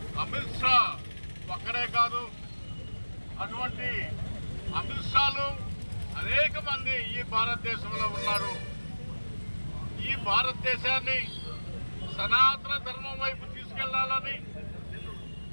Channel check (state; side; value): inverted; both; correlation -1.00